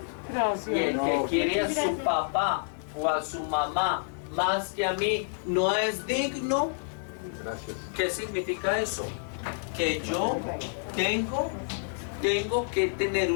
Gracias. Y el que quiere a su papá o a su mamá más que a mí no es digno. Gracias. ¿Qué significa eso? Que yo tengo que tener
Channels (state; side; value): silent; right; digital silence